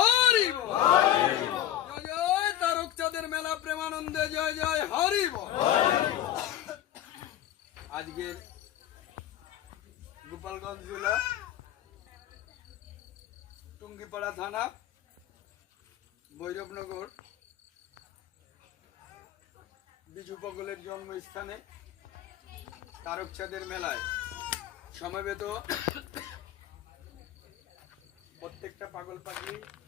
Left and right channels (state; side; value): quieter; right; 12.4 dB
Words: বল। জয় জয় তারক চাঁদের মেলা প্রেমানন্দে জয় জয় হরি বল। আজকের গোপালগঞ্জ জেলা টুঙ্গিপাড়া থানা ভৈরবনগর বিজু পগলের জন্মস্থানে তারক চাঁদের মেলায় সমবেত প্রত্যেকটা পাগল পাগলি